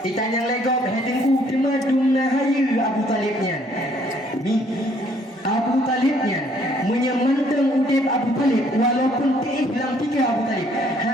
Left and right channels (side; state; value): both; normal; correlation 0.63